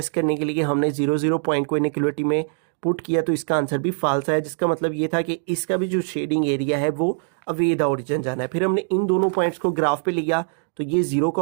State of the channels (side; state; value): left; silent; 64 dB below the other